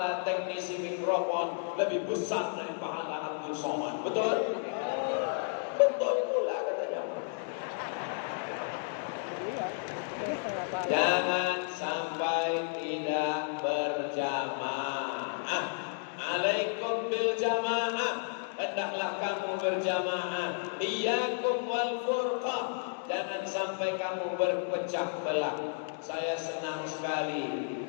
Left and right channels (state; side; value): silent; right; digital silence